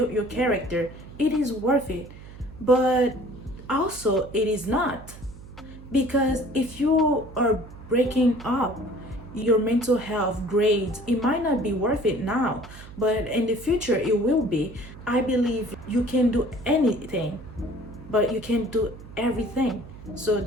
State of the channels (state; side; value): noise; right; hum, 16 dB below the sound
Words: your character, it is worth it. But also it is not, because if you are breaking up your mental health, grades, it might not be worth it now, but in the future it will be. I believe you can do anything, but you can't do everything. So